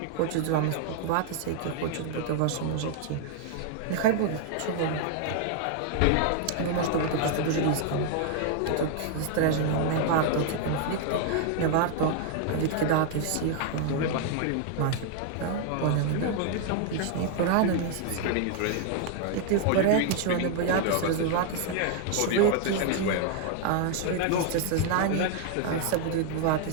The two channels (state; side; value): different; both; correlation 0.00